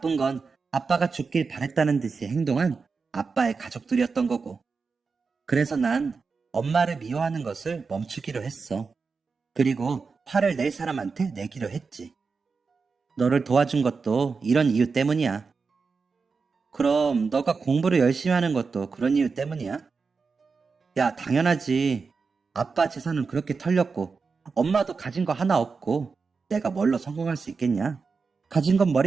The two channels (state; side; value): quieter; left; 4.8 dB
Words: 건 아빠가 죽길 바랬다는 듯이 행동한 아빠의 가족들이었던 거고. 그래서 난 엄마를 미워하는 것을 멈추기로 했어. 그리고 화를 낼 사람한테 내기로 했지. 너를 도와준 것도 이런 이유 때문이야. 그럼 너가 공부를 열심히 하는 것도 그런 이유 때문이야? 야, 당연하지. 아빠 재산은 그렇게 털렸고 엄마도 가진 거 하나 없고 내가 뭘로 성공할 수 있겠냐? 가진 건